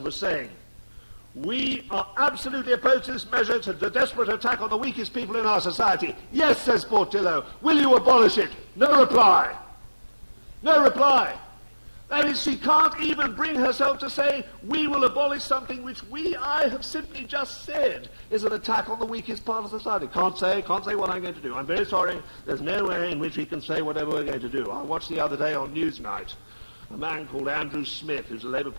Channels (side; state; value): both; inverted; correlation -1.00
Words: was saying, "We are absolutely opposed to this measure. It's a desperate attack on the weakest people in our society." "Yes," says Portillo. "Will you abolish it?" No reply. No reply. That is, she can't even bring herself to say, we will abolish something which I have simply just said is an attack on the weakest part of society. Can't say what I'm going to do. I'm very sorry. There's no way in which we can say whatever we're going to do. I watched the other day on Newsnight a man called Andrew Smith, who's a Labour